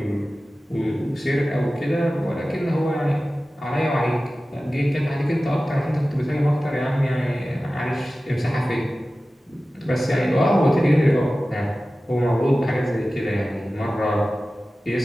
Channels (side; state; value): both; normal; correlation 0.96